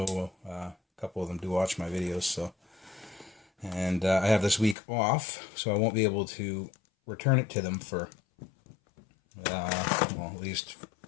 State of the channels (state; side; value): drops out; right; at 4.8 s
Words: a couple of them do watch my videos, so. And I have this week off, so I won't be able to return it to them for, at least